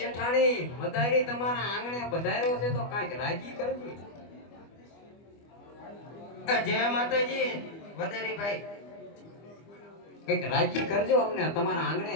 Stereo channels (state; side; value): late; right; 25 ms